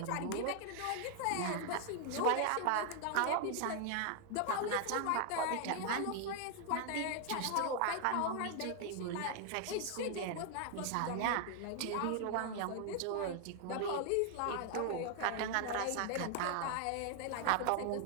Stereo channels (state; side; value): different; both; correlation 0.00